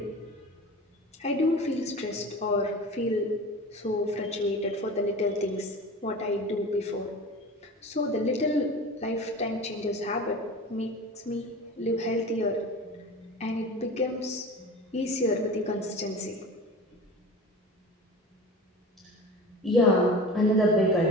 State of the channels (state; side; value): normal; both; correlation 0.35